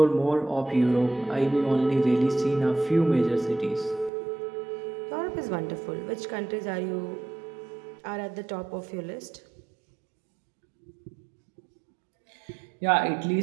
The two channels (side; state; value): left; drops out; at 4.1 s